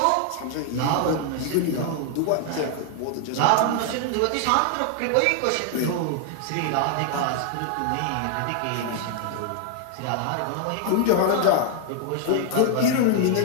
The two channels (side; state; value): both; different; correlation 0.00